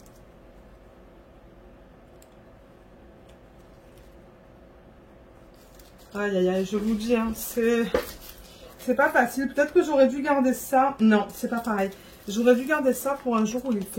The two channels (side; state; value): both; identical; correlation 1.00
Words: Aïe, aïe, aïe, je vous dis, hein, c'est pas facile. Peut-être que j'aurais dû garder ça. Non, c'est pas pareil. J'aurais dû garder ça pour un jour où il